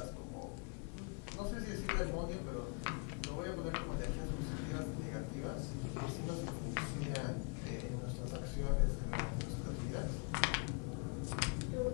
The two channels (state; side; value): quieter; right; 34.3 dB